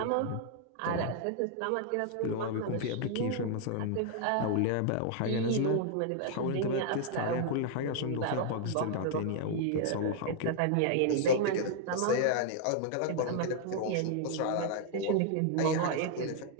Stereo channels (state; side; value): different; both; correlation 0.00